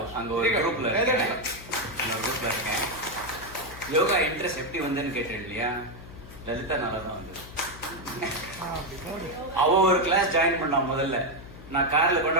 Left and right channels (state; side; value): noise; left; hum, 16 dB below the sound